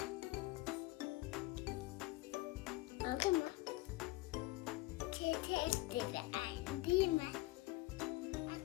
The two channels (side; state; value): right; quieter; 20.2 dB